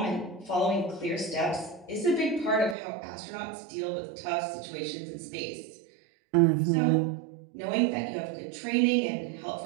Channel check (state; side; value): drops out; left; at 2.8 s